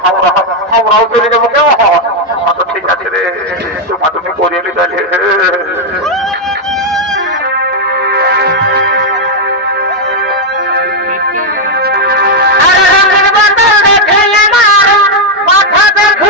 আমরাও চলে যাবো কেউ আচ্ছা ঠিক আছে রে তোমা তুমি করিয়ে নিতে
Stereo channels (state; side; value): normal; both; correlation 0.01